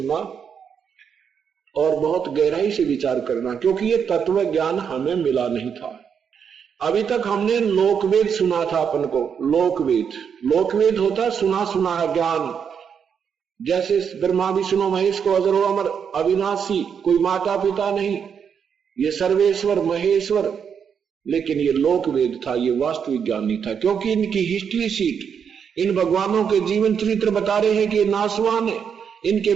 और बहुत गहराई से विचार करना, क्योंकि ये तत्व ज्ञान हमें मिला नहीं था। अभी तक हमने लोकवेद सुना था अपन को। लोकवेद होता सुना सुना ज्ञान, जैसे ब्रह्मा विष्णु महेश को अजर अमर अविनाशी, कोई माता पिता नहीं, ये सर्वेश्वर महेश्वर। लेकिन ये लोकवेद था, ये वास्तविक ज्ञान नहीं था, क्योंकि इनकी हिस्ट्री शीट इन भगवानों के जीवन चरित्र बता रहे हैं कि ये नासवान है, इनके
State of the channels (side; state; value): left; quieter; 7.2 dB